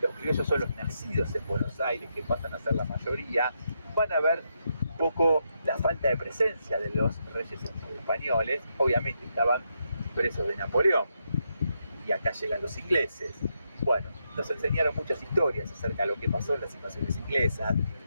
criollos son los nacidos en Buenos Aires, que pasan a ser la mayoría, van a ver un poco la falta de presencia de los reyes españoles. Obviamente estaban presos de Napoleón, y acá llegan los ingleses. Bueno, nos enseñaron muchas historias acerca de lo que pasó en las invasiones inglesas.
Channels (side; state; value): both; inverted; correlation -0.81